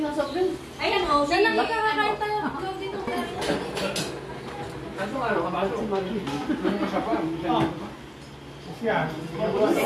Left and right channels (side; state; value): both; identical; correlation 1.00